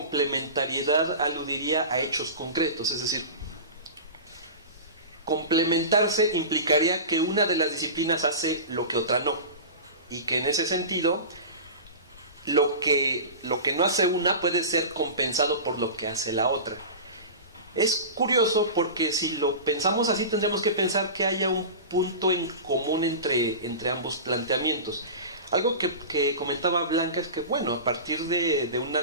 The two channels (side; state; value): both; inverted; correlation -0.30